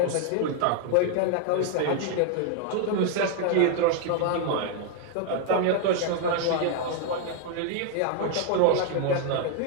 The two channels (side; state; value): both; different; correlation 0.00